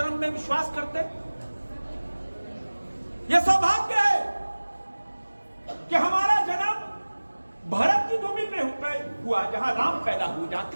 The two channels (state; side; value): inverted; both; correlation -1.00